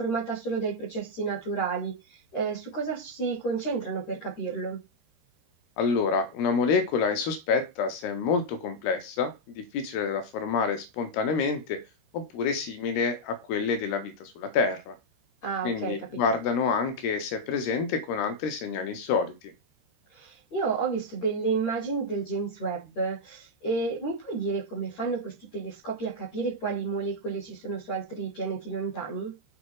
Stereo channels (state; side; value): late; right; 13 ms